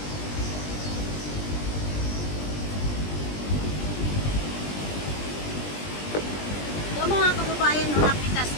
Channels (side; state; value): right; late; 20 ms